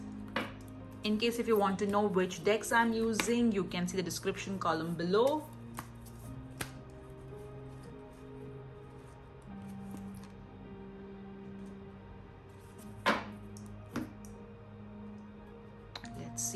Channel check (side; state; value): both; identical; correlation 1.00